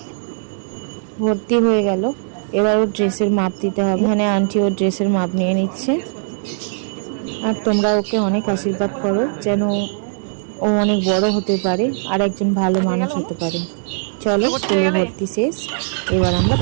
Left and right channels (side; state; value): left; silent; digital silence